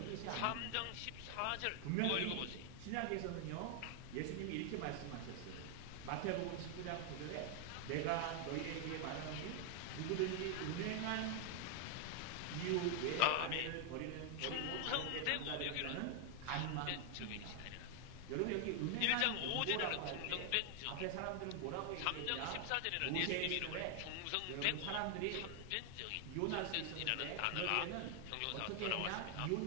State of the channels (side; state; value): both; different; correlation 0.00